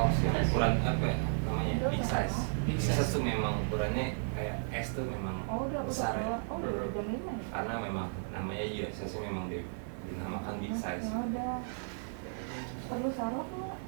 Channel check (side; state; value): left; silent; digital silence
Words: yang ukuran apa ya namanya big size. Big size tuh memang ukurannya kayak S tuh memang besar ya. Karena memang namanya juga size memang dinamakan big size. Perlu salep nggak?